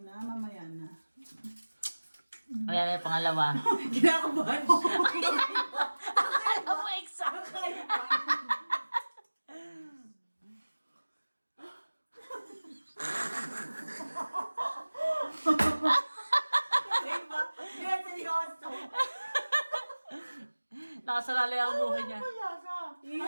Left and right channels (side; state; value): both; inverted; correlation -1.00